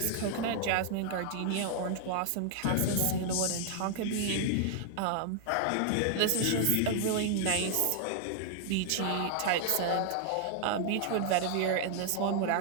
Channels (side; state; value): both; different; correlation 0.00